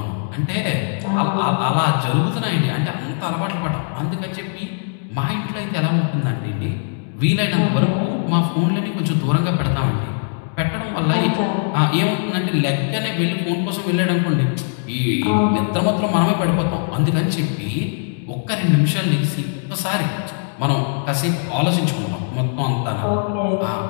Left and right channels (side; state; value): right; silent; digital silence